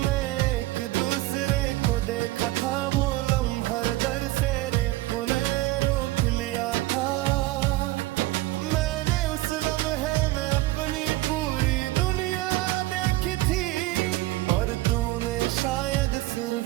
एक दूसरे को देखा था। वो लम्हा दर से रेपुने रोक लिया था। मैंने उस लम्हे में अपनी पूरी दुनिया देखी थी, और तूने शायद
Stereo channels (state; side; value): quieter; left; 18.1 dB